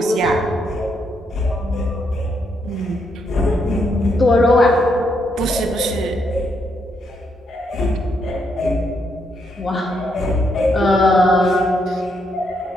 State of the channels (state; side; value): normal; both; correlation 0.77